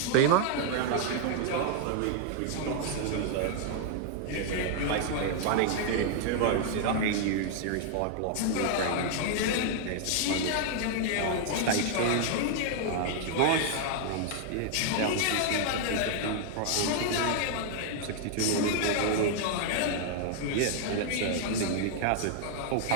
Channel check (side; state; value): both; different; correlation -0.01